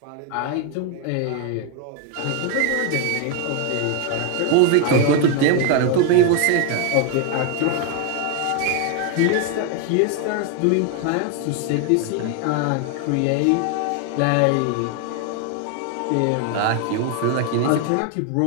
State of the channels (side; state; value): both; different; correlation 0.01